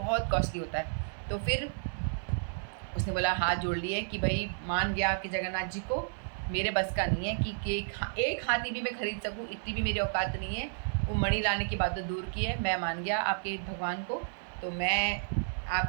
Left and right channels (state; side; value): silent; left; digital silence